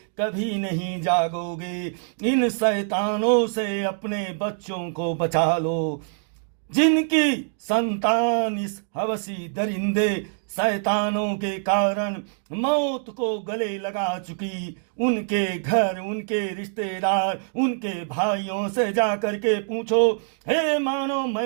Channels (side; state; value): left; silent; digital silence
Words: कभी नहीं जागोगे। इन शैतानों से अपने बच्चों को बचा लो। जिनकी संतान इस हवसी दरिंदे शैतानों के कारण मौत को गले लगा चुकी, उनके घर, उनके रिश्तेदार, उनके भाइयों से जा करके पूछो। हे मानो,